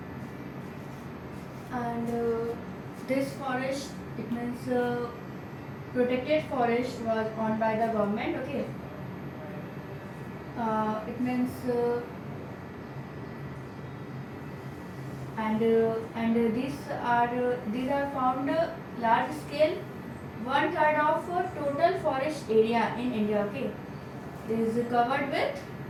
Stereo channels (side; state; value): both; identical; correlation 1.00